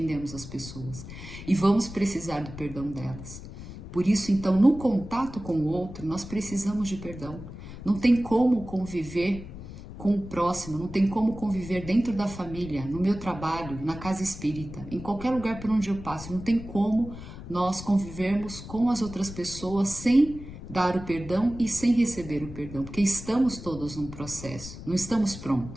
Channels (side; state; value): left; noise; rumble, 12 dB below the sound